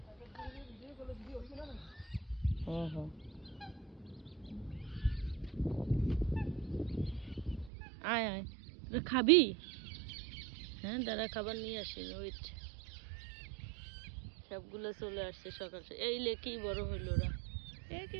আয় আয়, তোরা খাবি? হ্যাঁ দাঁড়া, খাবার নিয়ে আসি, ওয়েট। সবগুলো চলে আসছে সকাল সকাল। এই লে কি বড় হইল ওরা,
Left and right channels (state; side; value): drops out; left; at 7.7 s